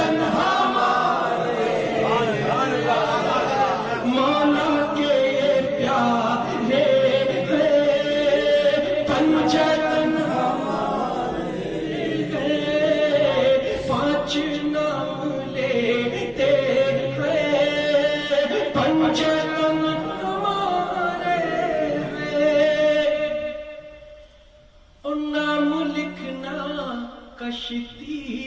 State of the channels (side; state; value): both; identical; correlation 1.00